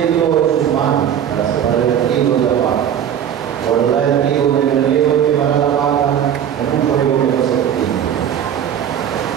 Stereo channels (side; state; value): left; quieter; 9.4 dB